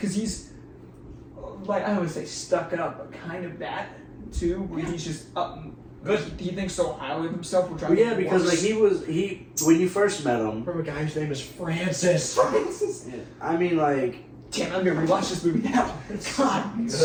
he's like I don't want to say stuck up, but kind of that too, where he's just Good. He thinks so highly of himself. Which Well, yeah, because like when you first met him. From a guy whose name is Francis. Francis. Yeah, I mean, like. Damn, I'm gonna rewatch this movie now. God. Good.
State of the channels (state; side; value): identical; both; correlation 1.00